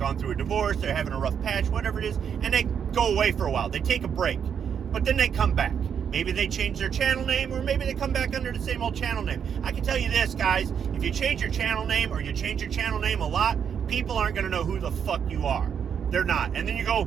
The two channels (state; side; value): quieter; left; 7.7 dB